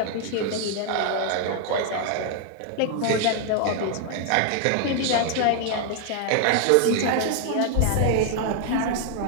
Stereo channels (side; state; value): both; different; correlation 0.00